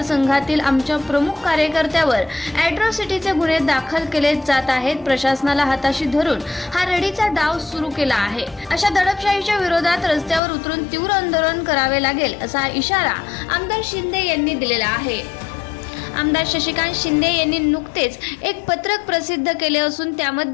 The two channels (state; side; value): drops out; right; at 10.4 s